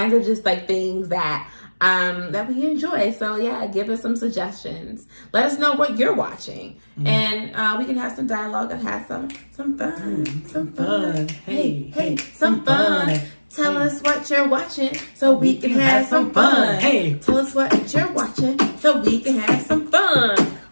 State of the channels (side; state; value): both; inverted; correlation -1.00